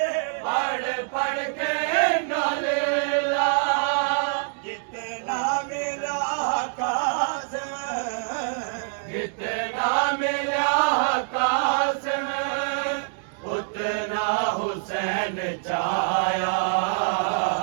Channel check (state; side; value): silent; left; digital silence